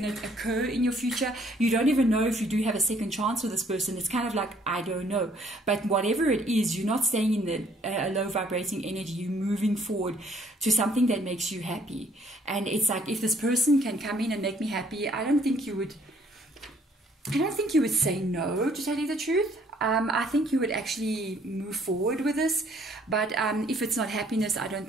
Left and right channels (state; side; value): normal; both; correlation 0.62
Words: to occur in your future. You don't even know if you do have a second chance with this person. It's kind of like, I don't know. But whatever it is, you're not staying in the low vibrating energy. You're moving forward to something that makes you happy. And it's like, if this person can come in and make me happy, I don't think you would say no, to tell you the truth. I think you would actually move forward with this, but if it's not happiness, I don't